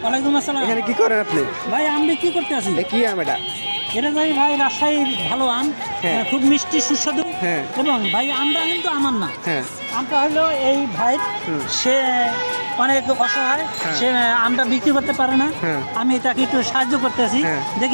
ওয়ালাইকুম আসসালাম। এখানে কি করেন আপনি? ভাই আম বিক্রি করতে আছি। কি আম এটা? এটা ভাই রাজশাহীর ভালো আম, হ্যাঁ। খুব মিষ্টি সুস্বাদু। হ্যাঁ। এবং ভাই আমটা কিন্তু আমার না, হ্যাঁ আমটা হলো এই ভাই, সে অনেক অসহায়, সে আমটা বিক্রি করতে পারে না। হ্যাঁ। আমি তাকে একটু সাহায্য করতে আছি। হ্যাঁ।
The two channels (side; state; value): both; inverted; correlation -1.00